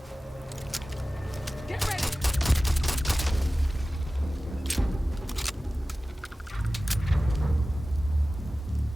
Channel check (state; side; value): normal; both; correlation 0.96